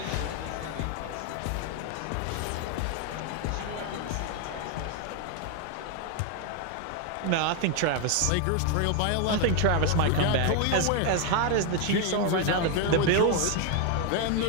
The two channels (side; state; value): both; different; correlation 0.01